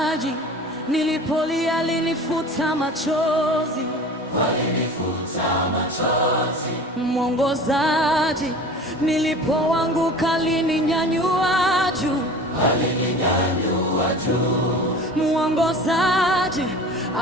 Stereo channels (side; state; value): both; normal; correlation 0.39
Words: nilipolia alinifuta machozi. Mwongozaji, nilipoanguka alininyanyua juu. Mwongozaji,